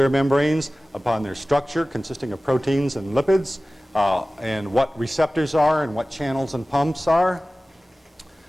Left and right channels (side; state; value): both; normal; correlation 0.97